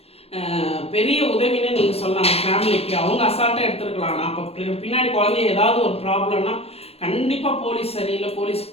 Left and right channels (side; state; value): right; late; 0.29 ms